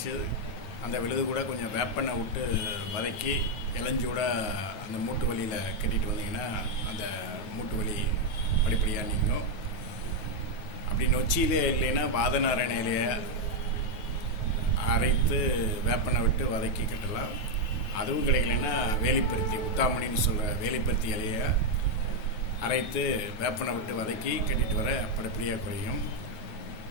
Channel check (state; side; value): late; right; 9.4 ms